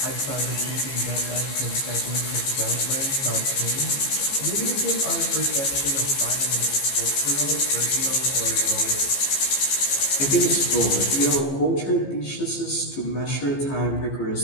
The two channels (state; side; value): late; right; 15 ms